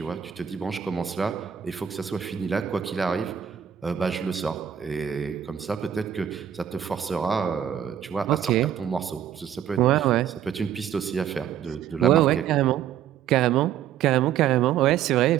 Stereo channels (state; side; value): quieter; left; 9.6 dB